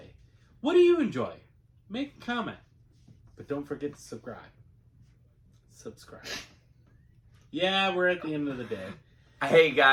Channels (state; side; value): identical; both; correlation 1.00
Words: What do you enjoy? Make a comment. But don't forget to subscribe. Yeah, we're at the end of the day. Hey